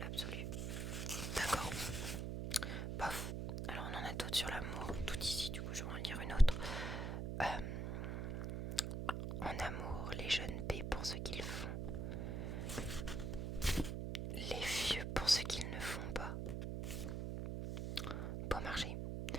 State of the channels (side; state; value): right; noise; hum, 2 dB below the sound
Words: D'accord. Bof. Alors on en a d'autres sur l'amour, tout ici, du coup je vais en lire une autre. En amour, les jeunes paient pour ce qu'ils font, les vieux pour ce qu'ils ne font pas. Bon marché.